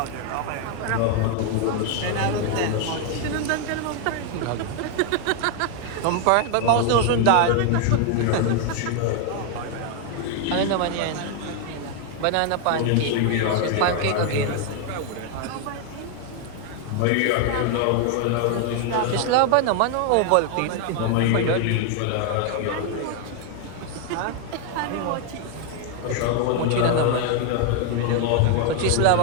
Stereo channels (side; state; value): both; different; correlation 0.00